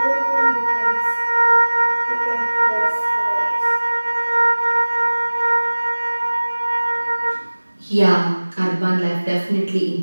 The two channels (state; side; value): inverted; both; correlation -1.00